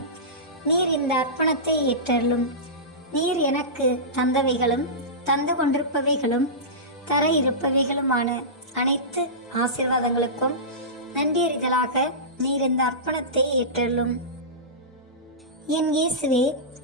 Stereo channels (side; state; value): both; normal; correlation -0.19